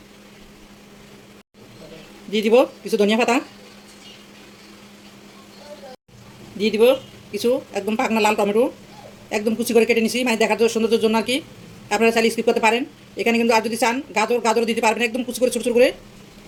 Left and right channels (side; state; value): both; identical; correlation 1.00